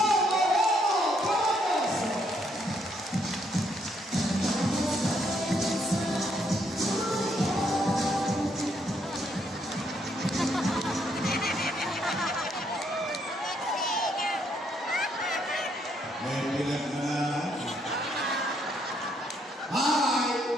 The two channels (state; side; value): normal; both; correlation 0.72